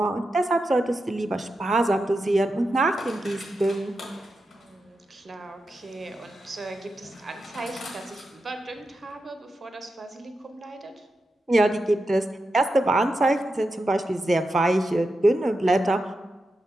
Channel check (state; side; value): normal; both; correlation 0.89